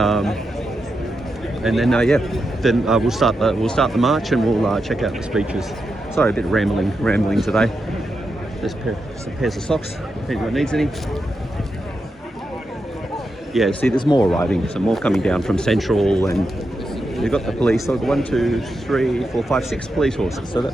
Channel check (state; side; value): normal; both; correlation 0.87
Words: And then we'll start the march and we'll check out the speeches. Sorry, a bit of rambling today. There's some pairs of socks if anyone needs any. Yeah, see, there's more arriving, so more coming down from Central, and you've got the police. So 1, 2, 3, 4, 5, 6 police horses. So